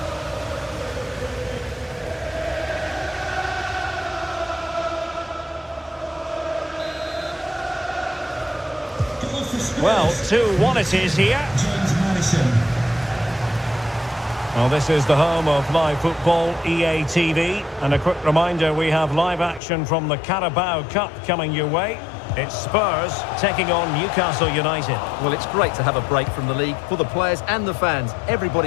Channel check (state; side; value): drops out; right; at 19.6 s